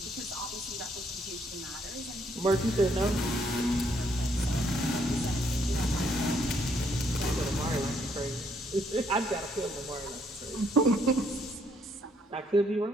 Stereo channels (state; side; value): normal; both; correlation 0.70